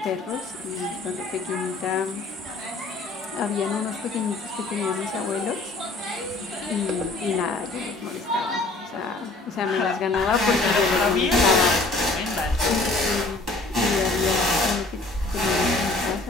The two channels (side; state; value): right; quieter; 3.2 dB